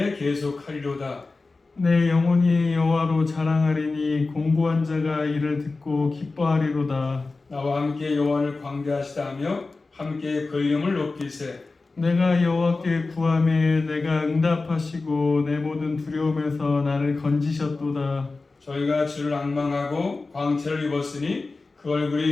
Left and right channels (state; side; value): quieter; right; 3.7 dB